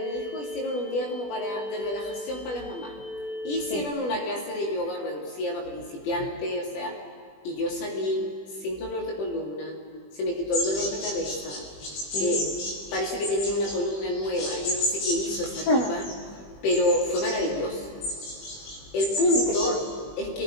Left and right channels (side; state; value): right; late; 20 ms